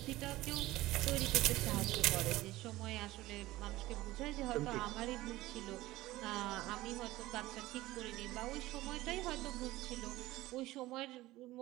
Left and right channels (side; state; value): left; quieter; 17.5 dB